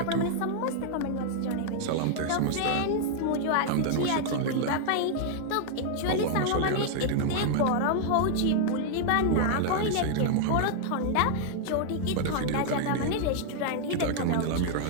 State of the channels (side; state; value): both; different; correlation -0.01